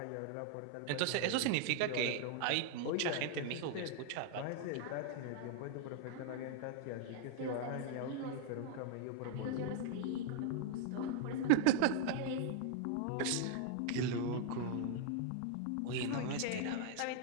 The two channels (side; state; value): both; different; correlation 0.00